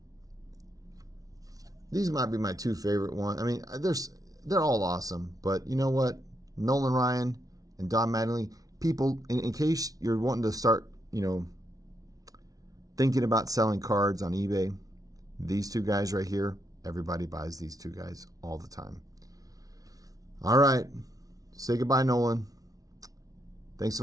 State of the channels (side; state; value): left; late; 0.18 ms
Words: These might be my two favorite ones. I mean, they're all awesome, but you know what? Nolan Ryan and Don Mattingly. People, in case you're wanting to start, thinking about selling cards on eBay, these two guys right here, Everybody buys these two guys all the time. All right. Say goodbye, Nolan. Thanks